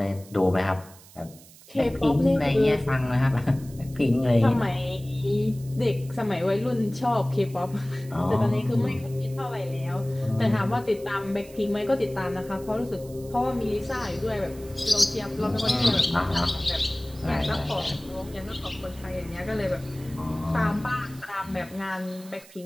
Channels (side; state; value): right; noise; hiss, 22 dB below the sound